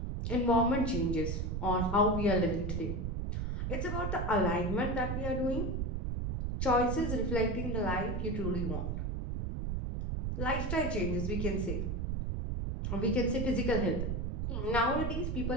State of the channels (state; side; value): noise; right; rumble, 1 dB below the sound